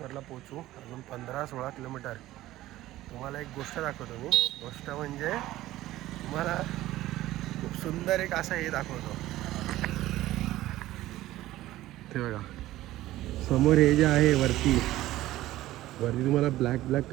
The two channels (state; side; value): quieter; left; 15.6 dB